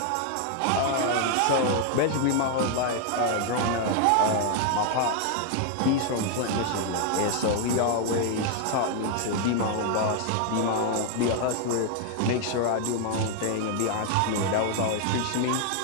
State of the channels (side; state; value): both; different; correlation 0.00